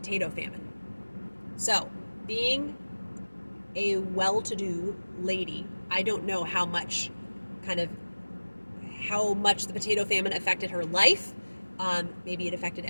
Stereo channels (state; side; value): inverted; both; correlation -1.00